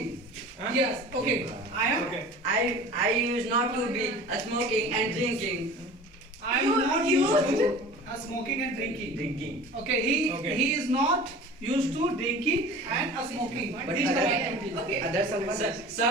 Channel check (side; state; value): both; normal; correlation 0.40